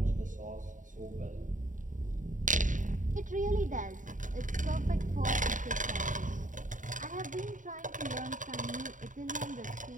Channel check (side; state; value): left; late; 0.37 ms